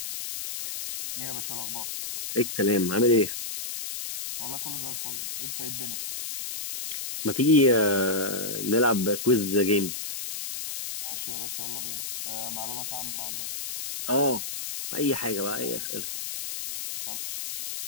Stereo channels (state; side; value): noise; left; hiss, 6 dB below the sound